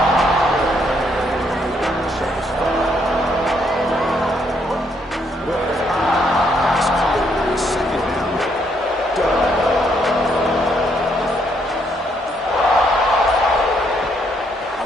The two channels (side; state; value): both; normal; correlation 0.72